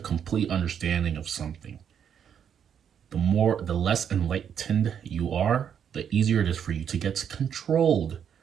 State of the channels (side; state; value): left; quieter; 8.3 dB